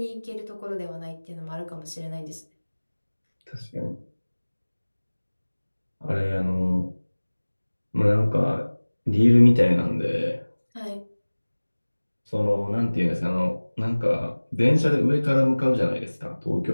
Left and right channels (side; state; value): both; inverted; correlation -1.00